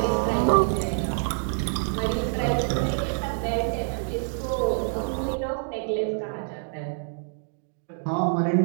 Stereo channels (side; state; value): left; silent; digital silence